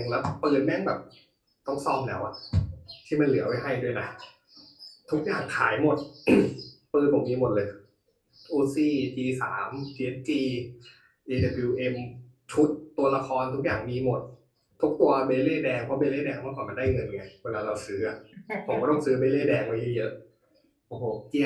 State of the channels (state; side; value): identical; both; correlation 1.00